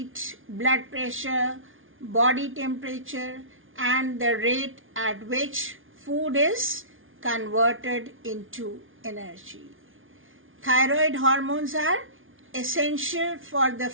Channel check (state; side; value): late; left; 0.58 ms